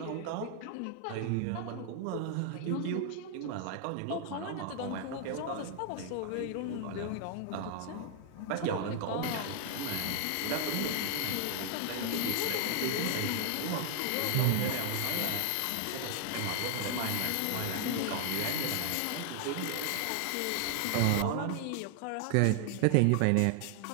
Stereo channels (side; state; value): both; different; correlation 0.00